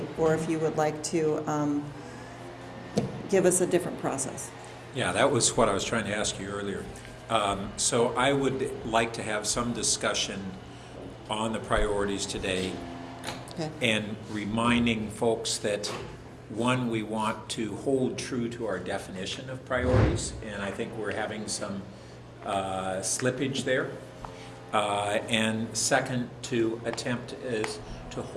or if you would like to give us a different process? Yeah, that was what I was trying to ask you earlier. So I would like to have some discussion on the priorities today. Okay. And reminding folks that, one, we want to hold true to our definition of priorities, and I think we're having some slippage there. And second, to attempt to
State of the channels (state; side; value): identical; both; correlation 1.00